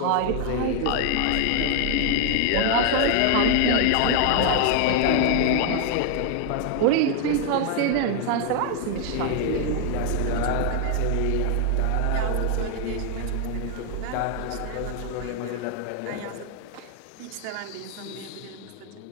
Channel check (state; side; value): different; both; correlation 0.00